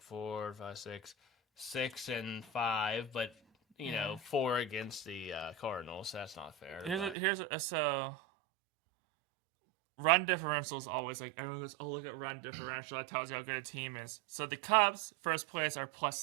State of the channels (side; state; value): left; drops out; at 7.2 s